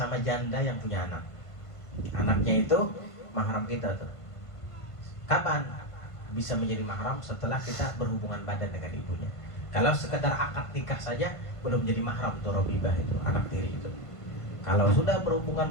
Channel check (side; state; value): right; late; 1.5 ms